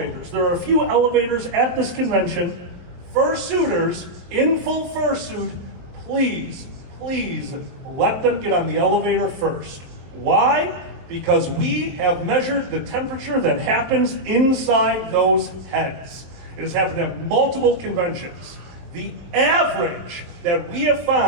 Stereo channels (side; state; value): left; late; 23 ms